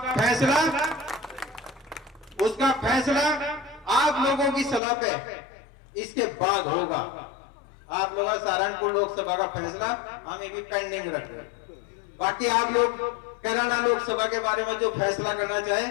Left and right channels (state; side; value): drops out; right; at 4.8 s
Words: फैसला आप लोगों की सलाह पे इसके बाद होगा। आप लोग सहारनपुर लोकसभा का फैसला हम ये भी पेंडिंग रख रहे हैं। बाकी आप लोग कैराना लोकसभा के बारे में जो फैसला करना चाहे